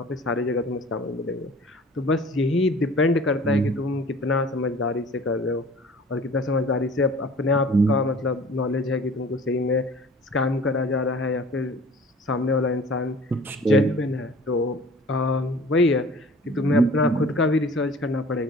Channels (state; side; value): normal; both; correlation 0.47